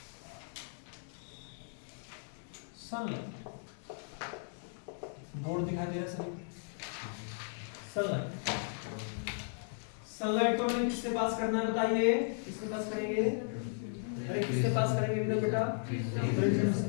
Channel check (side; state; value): right; silent; 54 dB below the other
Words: सनलाइट, बोर्ड दिखाई दे रहा है सभी? सनलाइट, सनलाइट को हमें किससे पास करना है बताइए? किससे पास करेंगे? अरे किससे पास करेंगे इधर बेटा? प्रिज्म से।